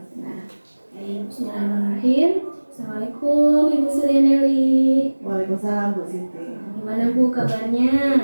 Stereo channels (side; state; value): both; inverted; correlation -1.00